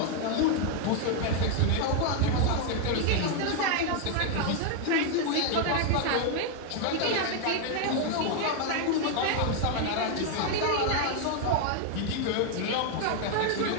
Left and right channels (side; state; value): both; different; correlation 0.00